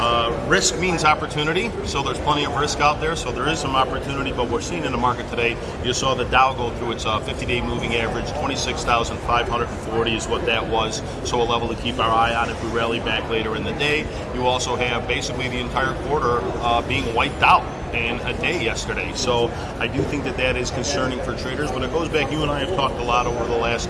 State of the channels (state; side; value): identical; both; correlation 1.00